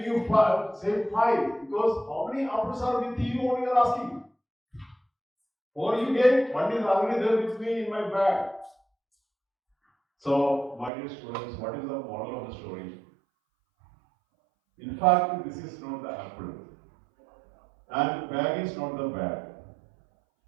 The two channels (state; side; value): drops out; left; at 10.9 s